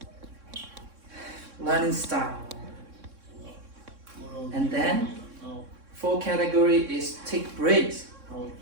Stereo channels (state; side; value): late; left; 3.6 ms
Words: learning style. And then fourth category is take breaks. Our